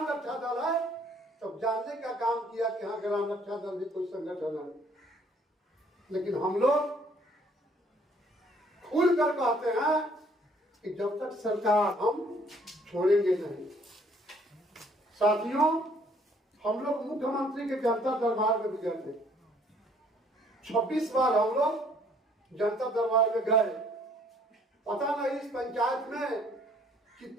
रक्षा दल है, तब जानने का काम किया कि हाँ ग्राम रक्षा दल भी कोई संगठन है। लेकिन हम लोग खुल कर कहते हैं कि जब तक सरकार, हम छोड़ेंगे नहीं। साथियों, हम लोग मुख्यमंत्री के जनता दरबार में भी गए थे। 26 बार हम लोग जनता दरबार में गए, पता नहीं इस पंचायत में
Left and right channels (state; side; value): normal; both; correlation 0.61